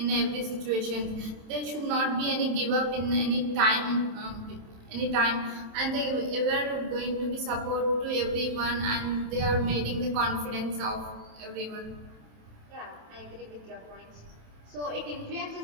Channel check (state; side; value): late; left; 27 ms